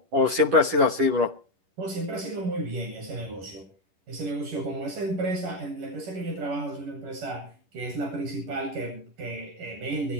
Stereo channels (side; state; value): left; late; 10 ms